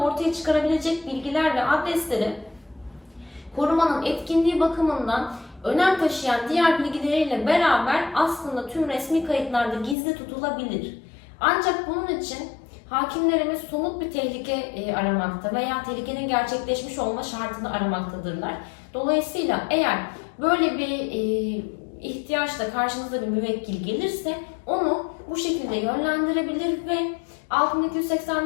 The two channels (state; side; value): drops out; right; at 10.0 s